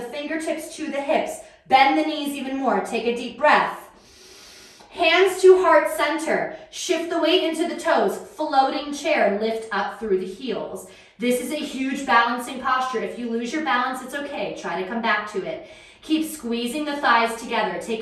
fingertips to the hips. Bend the knees even more. Take a deep breath. Hands to heart center. Shift the weight into the toes. Floating chair. Lift up through the heels. This is a huge balancing posture. If you lose your balance, it's okay. Try to come back to it. Keep squeezing the thighs together.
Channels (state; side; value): identical; both; correlation 1.00